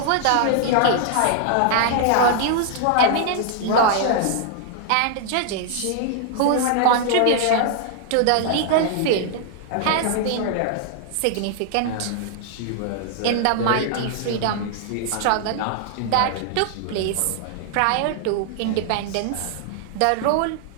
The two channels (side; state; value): both; different; correlation 0.00